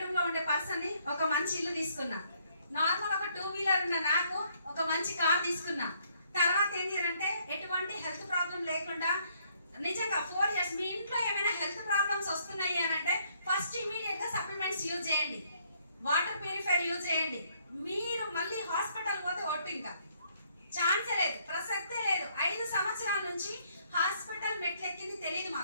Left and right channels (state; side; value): inverted; both; correlation -0.68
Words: లో ఉండే పర్సన్ ని ఒక మంచి ఇల్లు తీసుకున్నా. నార్మల్ ఒక 2 వీలర్ ఉన్న నాకు ఒక మంచి కార్ తీసుకున్నా. తర్వాత ఏంటి అంటే ఎటువంటి హెల్త్ ప్రాబ్లం లేకుండా నిజంగా 4 ఇయర్స్ మీ ఇంట్లో ఏమైనా హెల్త్ ప్రాబ్లమ్స్ వస్తున్నాయి అని అంటే ఫస్ట్ ఇమీడియట్ గా సప్లిమెంట్స్ యూజ్ చేయండి, వాటర్ ప్యూరిఫైర్ యూజ్ చేయండి. మీరు మళ్ళీ హాస్పిటల్ పోతే ఒట్టు ఇంకా ఛాన్సే లేదు, ప్రసక్తే లేదు. 5 సంవత్సరాల నుంచి హాస్పిటల్ మెట్లెక్కింది తెలియదు